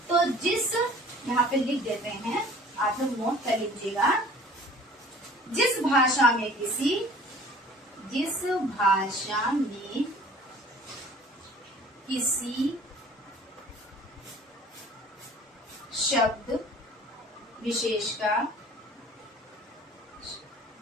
तो जिस, यहाँ पे लिख देते हैं, आप लोग नोट कर लीजिएगा, जिस भाषा में किसी शब्द विशेष का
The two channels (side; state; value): both; normal; correlation 0.49